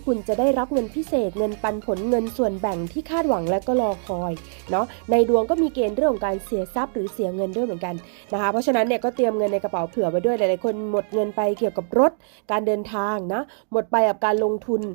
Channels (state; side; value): silent; left; digital silence